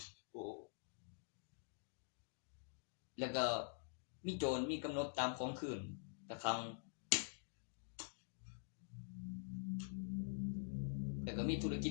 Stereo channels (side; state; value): right; silent; digital silence